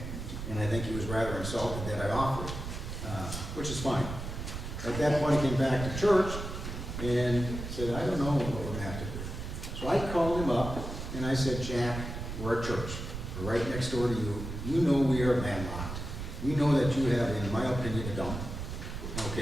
And I think he was rather insulted that I offered, which is fine. At that point, he came back to church and said, I don't know what we're gonna have to do. So I called him up and I said, Jack, we're a church. We're right next door to you. You know we are landlocked. We know that you have, in my opinion, a dump.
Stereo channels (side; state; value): right; noise; rumble, 7 dB below the sound